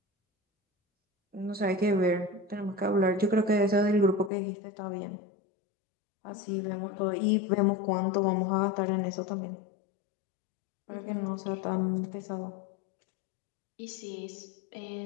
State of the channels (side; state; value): right; drops out; at 4.3 s